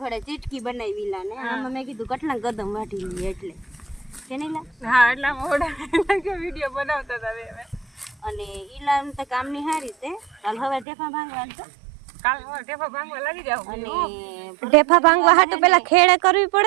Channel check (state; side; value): drops out; left; at 10.9 s